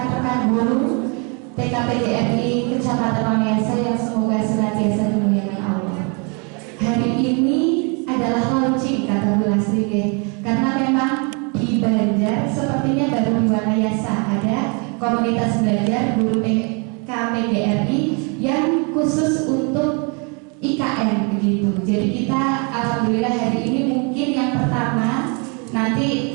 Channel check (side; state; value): left; quieter; 34.4 dB